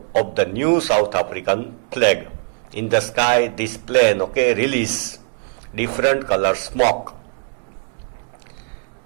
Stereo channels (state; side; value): silent; left; 65 dB below the other